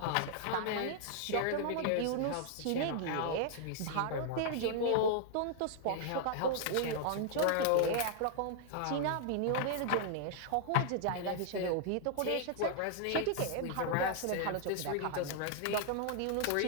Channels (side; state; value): both; different; correlation -0.01